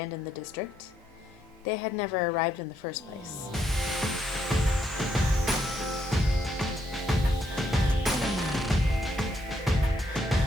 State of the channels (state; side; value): normal; both; correlation 0.75